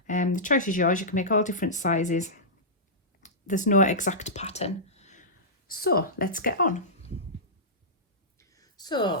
The choice is yours. You can make all different sizes. There's no exact pattern. So let's get on.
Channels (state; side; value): normal; both; correlation -0.15